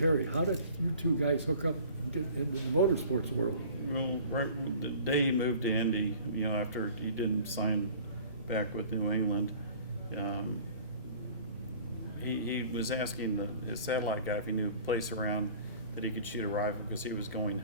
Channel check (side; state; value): both; inverted; correlation -0.48